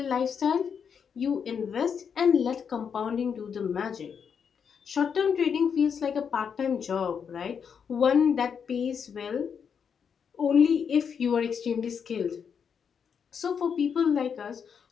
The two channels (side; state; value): right; quieter; 6.9 dB